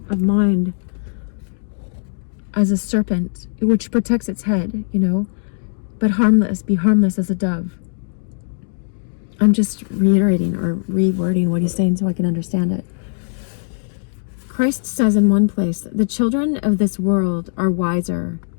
mind as a serpent, which protects its head, but be harmless as a dove. I'm just reiterating or rewording what he's saying so I can understand it. Christ says in one place, the children of this world are wiser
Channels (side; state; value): right; silent; digital silence